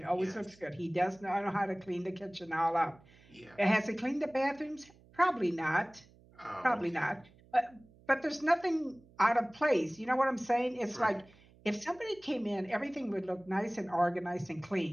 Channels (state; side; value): noise; right; hum, 27 dB below the sound